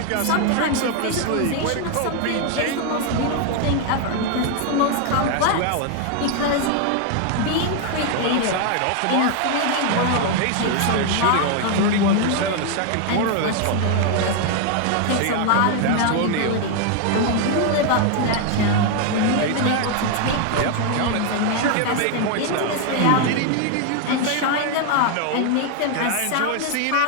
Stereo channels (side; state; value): both; different; correlation 0.01